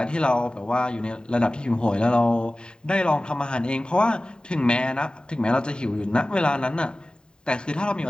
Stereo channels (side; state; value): right; late; 0.048 ms